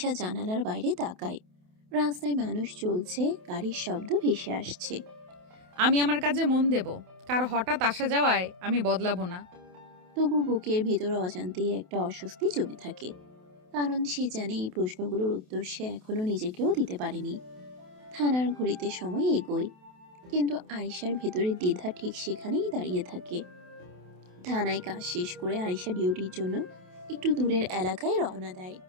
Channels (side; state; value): left; late; 28 ms